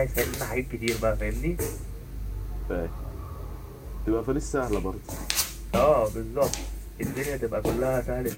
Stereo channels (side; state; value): both; identical; correlation 1.00